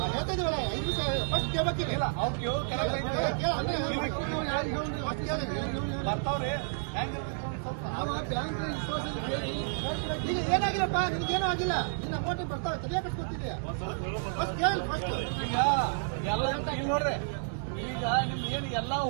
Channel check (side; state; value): left; silent; digital silence